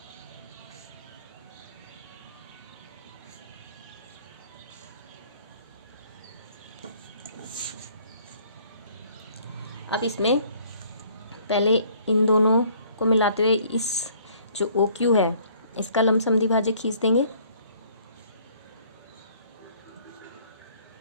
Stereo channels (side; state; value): both; inverted; correlation -0.59